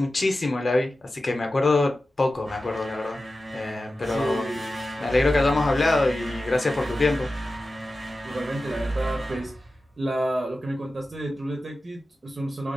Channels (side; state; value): both; normal; correlation 0.94